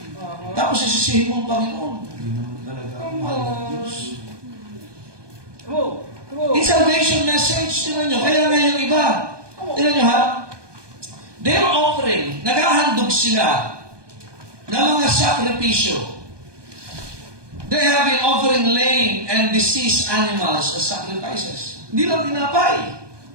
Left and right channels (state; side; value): late; left; 1.2 ms